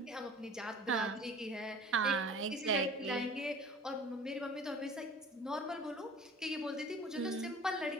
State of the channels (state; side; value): normal; both; correlation 0.44